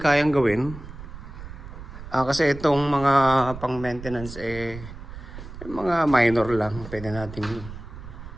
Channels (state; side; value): noise; right; rumble, 13 dB below the sound